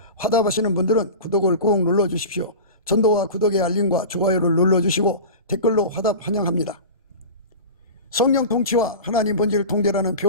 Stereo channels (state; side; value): inverted; both; correlation -0.31